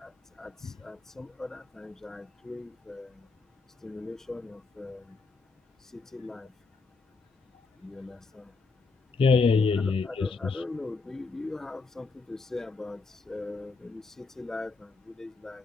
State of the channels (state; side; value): quieter; right; 4.3 dB